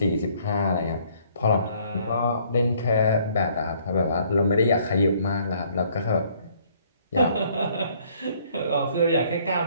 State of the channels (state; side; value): inverted; both; correlation -0.62